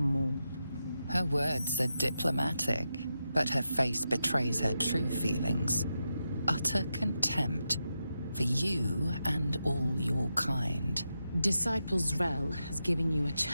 Her words are diplomatic, but her face betrays her true feelings. Utter contempt for you and all your kind. Disciples Rel has given you a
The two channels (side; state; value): both; inverted; correlation -0.88